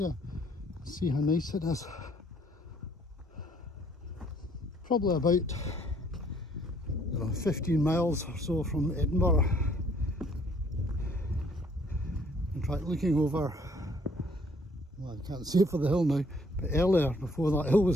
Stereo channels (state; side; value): normal; both; correlation 0.62